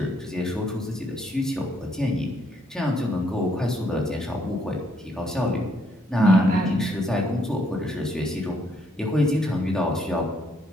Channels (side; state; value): both; normal; correlation 0.71